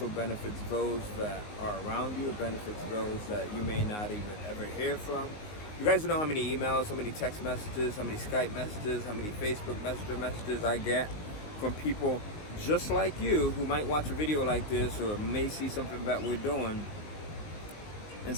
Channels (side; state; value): right; late; 19 ms